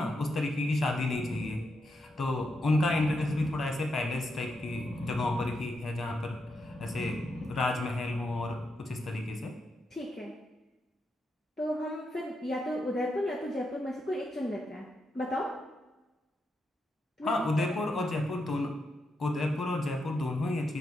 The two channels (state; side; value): normal; both; correlation 0.83